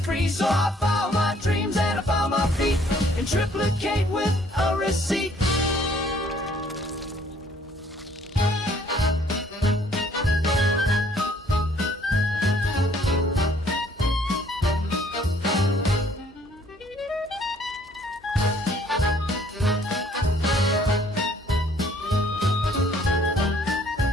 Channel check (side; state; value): both; normal; correlation 0.61